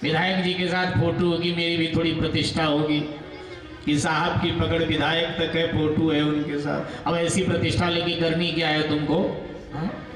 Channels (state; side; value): identical; both; correlation 1.00